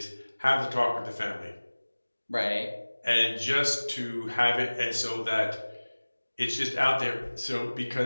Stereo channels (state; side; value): inverted; both; correlation -1.00